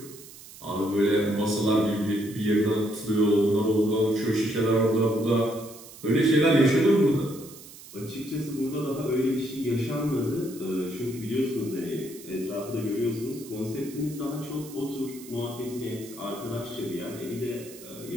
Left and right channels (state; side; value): noise; right; hiss, 18 dB below the sound